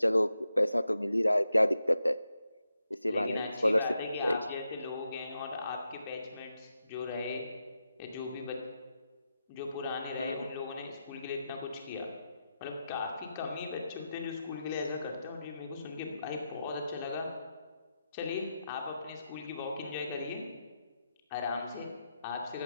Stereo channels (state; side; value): inverted; both; correlation -0.87